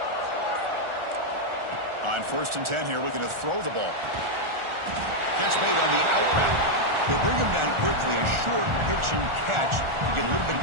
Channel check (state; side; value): late; left; 1.4 ms